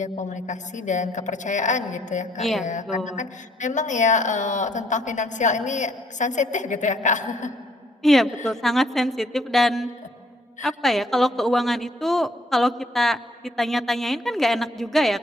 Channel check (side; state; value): both; normal; correlation 0.65